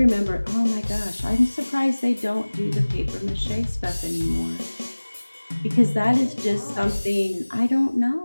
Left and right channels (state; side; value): inverted; both; correlation -1.00